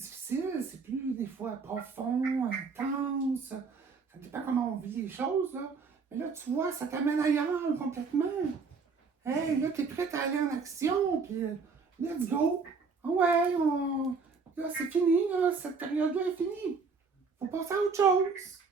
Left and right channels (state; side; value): quieter; left; 4.9 dB